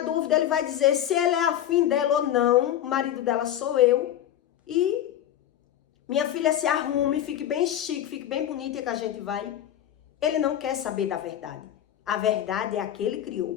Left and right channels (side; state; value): right; quieter; 11.2 dB